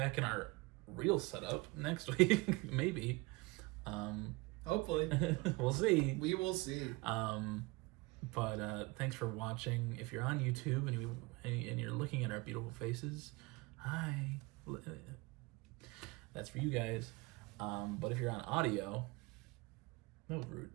in our real setup next week, maybe. Hopefully. We'll see. We will see. But thanks for watching. If you're on YouTube and you're looking at our beautiful faces, hi. That's for you guys. But if you're on audio, no rude.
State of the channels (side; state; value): left; quieter; 24.2 dB